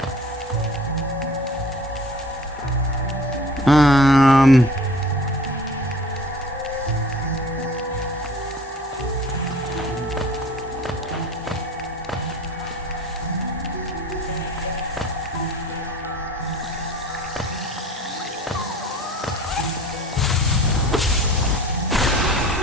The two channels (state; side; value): normal; both; correlation 0.46